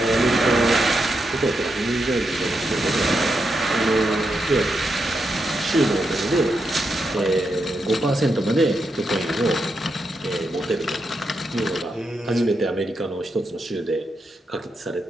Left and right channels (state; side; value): normal; both; correlation 0.84